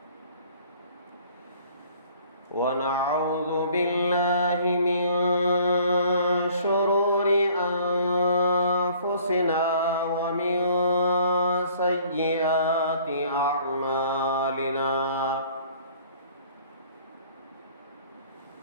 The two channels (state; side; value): inverted; both; correlation -0.55